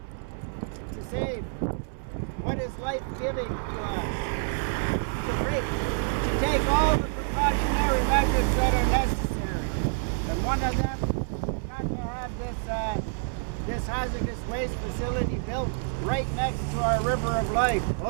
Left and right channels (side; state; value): left; silent; 60 dB below the other